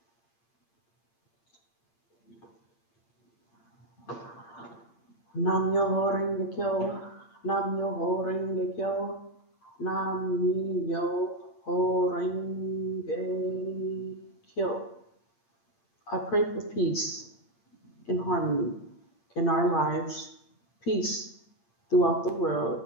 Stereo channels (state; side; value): late; right; 8.7 ms